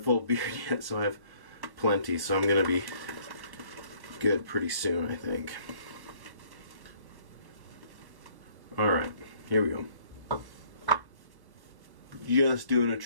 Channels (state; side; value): late; left; 1.1 ms